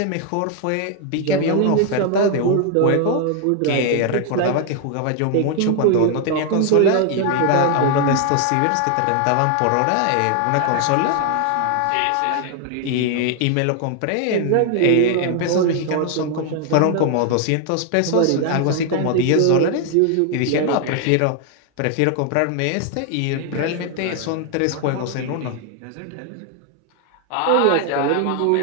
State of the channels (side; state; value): both; different; correlation 0.00